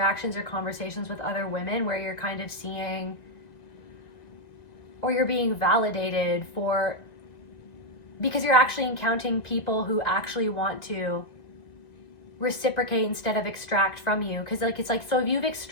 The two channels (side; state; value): right; late; 1.9 ms